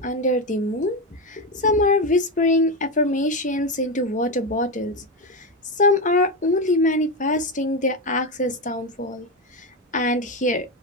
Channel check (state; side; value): normal; both; correlation 0.12